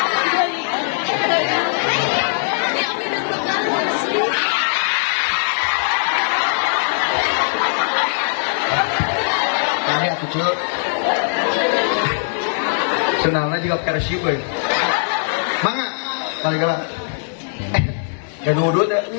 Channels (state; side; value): silent; right; digital silence